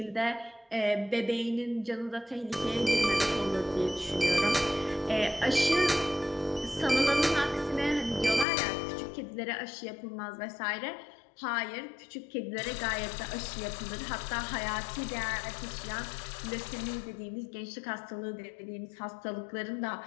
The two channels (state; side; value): drops out; right; at 8.5 s